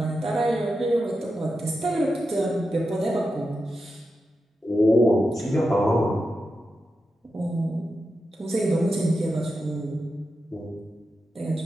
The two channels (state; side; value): normal; both; correlation 0.89